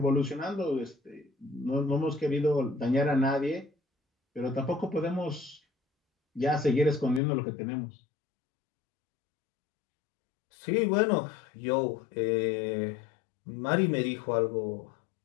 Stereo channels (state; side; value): drops out; right; at 7.2 s